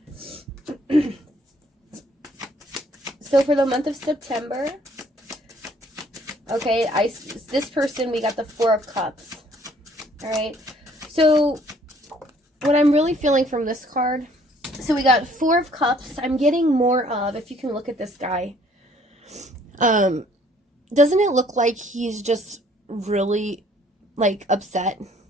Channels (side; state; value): both; normal; correlation 0.61